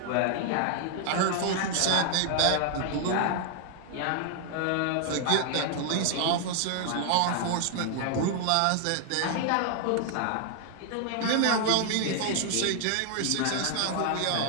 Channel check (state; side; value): different; both; correlation 0.00